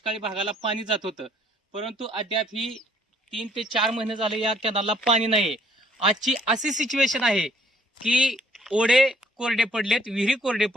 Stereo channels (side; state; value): both; normal; correlation 0.62